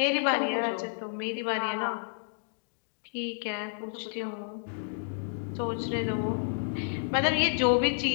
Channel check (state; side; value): silent; right; digital silence